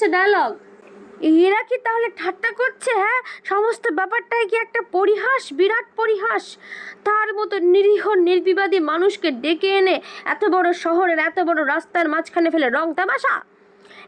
ডায়লগ। এরা কি তাহলে ঠাট্টা করছে? হ্যাঁ, সমস্ত ব্যাপারটাই কি একটা পরিহাস, বিরাট পরিহাস? তার মতো নিরীহ নির্বিবাদী মানুষকে ডেকে এনে এত বড় শহরের এত বড় রাস্তার মাঝখানে ফেলে রং তামাশা?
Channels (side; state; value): both; identical; correlation 1.00